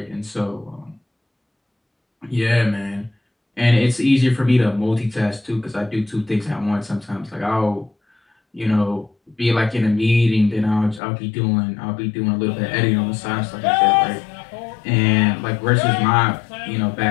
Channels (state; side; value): drops out; right; at 11.0 s